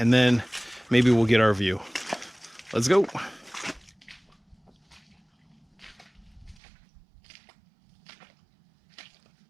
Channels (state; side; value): drops out; left; at 6.6 s